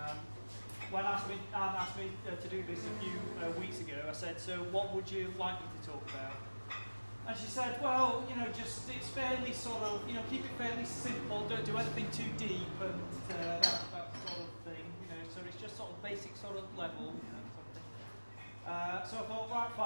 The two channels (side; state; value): both; inverted; correlation -1.00